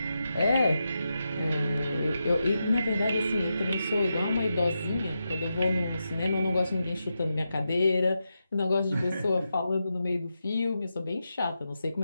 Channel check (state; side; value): inverted; both; correlation -0.88